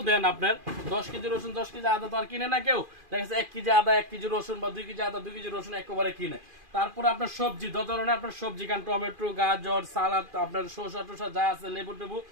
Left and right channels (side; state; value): left; late; 2.4 ms